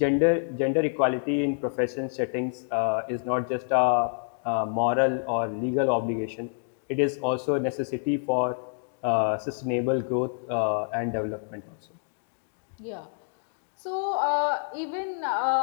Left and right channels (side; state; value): right; silent; digital silence